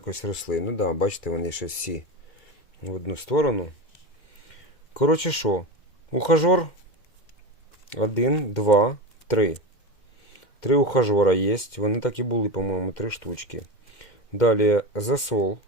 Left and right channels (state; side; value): late; right; 2.1 ms